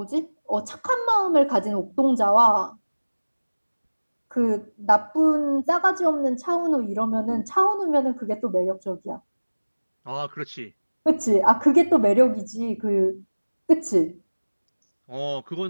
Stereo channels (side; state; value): both; inverted; correlation -1.00